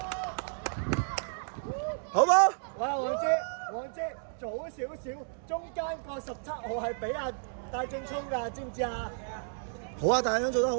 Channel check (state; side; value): silent; left; digital silence